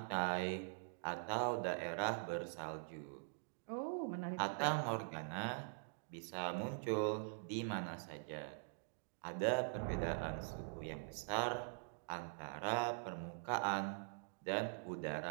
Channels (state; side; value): silent; left; digital silence